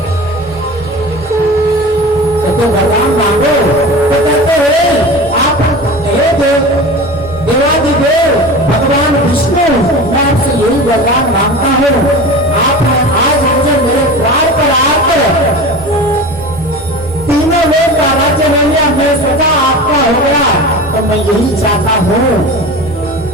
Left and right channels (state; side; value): normal; both; correlation 0.33